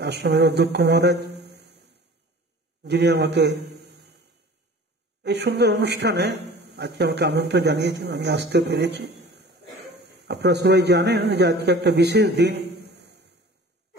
অধ্যক্ষ মহারাজ, যিনি আমাকে এই সুন্দর অনুষ্ঠানে আজকে আমাকে আমন্ত্রণ জানিয়েছেন, আমি আসতে পেরেছি। আপনারা সবাই জানেন যে আজকে একটা বিশেষ দিন,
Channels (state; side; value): normal; both; correlation 0.44